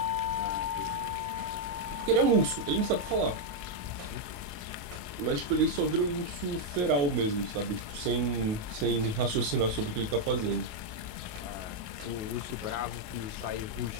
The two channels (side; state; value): left; late; 28 ms